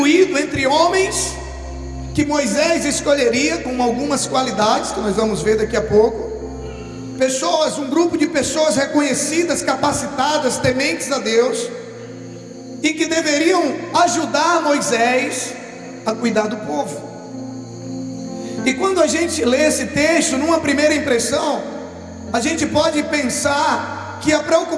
entre homens que Moisés escolheria com algumas qualidades que nós vamos ver daqui a pouco. Pessoas, um grupo de pessoas reconhecidas, capacitadas, tementes a Deus, e que deveriam ajudar Moisés a cuidar do povo. E quando a gente lê esse texto, numa primeira impressão, a gente pode pensar que a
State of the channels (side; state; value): both; identical; correlation 1.00